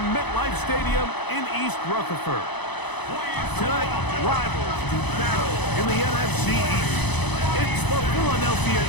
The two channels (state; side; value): late; right; 0.99 ms